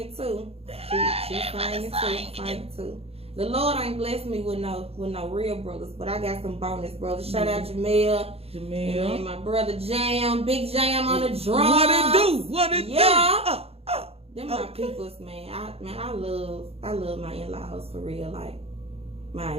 too. She's singing too. The Lord ain't blessed me with no real brothers, but I got some bonus brothers. Shout out Jamel. And my brother Jam, Big Jam on the drums. What it do? Yeah. Them my peoples, man. I love my in-laws for real. Like,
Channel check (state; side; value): late; left; 0.29 ms